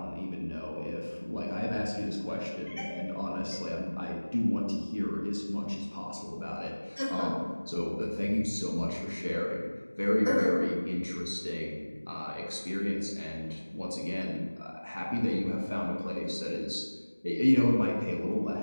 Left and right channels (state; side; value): inverted; both; correlation -1.00